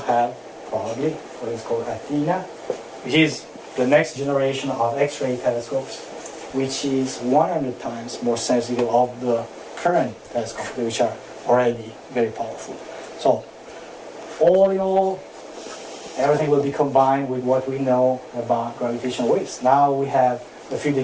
probably what is called Athena, which is the next generation of X-ray telescopes, which is 100 times more sensitive of the current telescopes, which are already very powerful. So, all in all, everything will be combined with what we know about gravitational waves. Now we have a few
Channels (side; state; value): both; identical; correlation 1.00